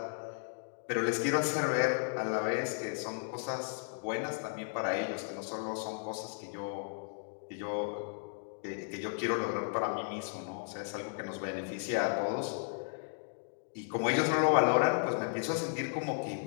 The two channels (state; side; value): silent; right; digital silence